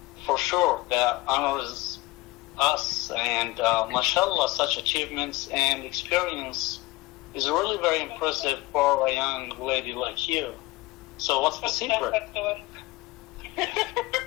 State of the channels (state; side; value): quieter; right; 21.2 dB